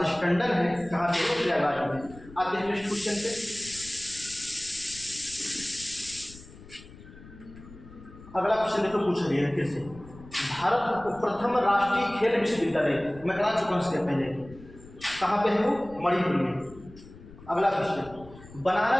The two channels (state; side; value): noise; left; rumble, 19 dB below the sound